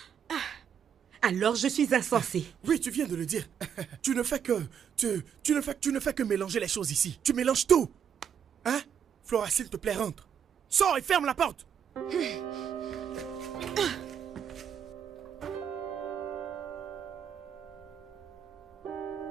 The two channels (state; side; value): quieter; left; 8.1 dB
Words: Alors je suis insensée. Oui, tu viens de le dire. Tu ne fais que mélanger les choses ici. Tu mélanges tout. Hein? Flora, s'il te plaît, rentre. Sors et ferme la porte.